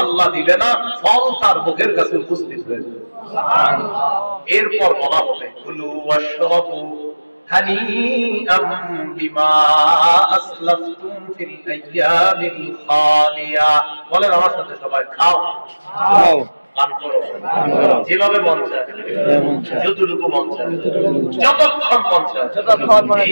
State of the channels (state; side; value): inverted; both; correlation -1.00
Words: আল্লাহ দিবে না, ফল তার মুখের কাছে উপস্থিত হয়ে যাবে। সুবহানাল্লাহ। এরপর বলা হবে কুলু ওয়াশরাবু হানিআম বিমা আসলাফতুম ফিল আইয়ামিল খালিয়া। বলেন আমার সাথে সবাই, খাও খাও পান করো, যেভাবে মন চায়, যতটুকু মন চায়, যতক্ষণ মন চায়, যতক্ষণ